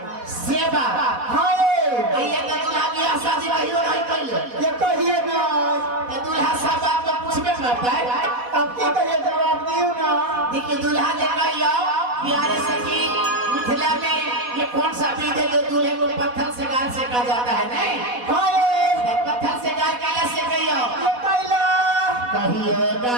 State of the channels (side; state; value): left; late; 4.1 ms